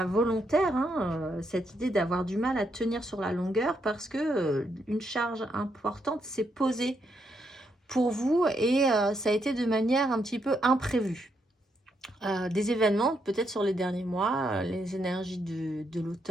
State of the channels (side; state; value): both; normal; correlation 0.78